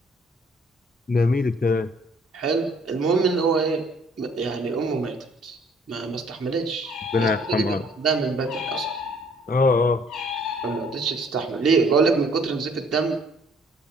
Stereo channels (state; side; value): normal; both; correlation 0.60